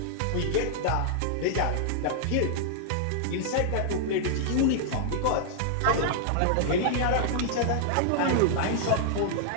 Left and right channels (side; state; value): both; different; correlation -0.01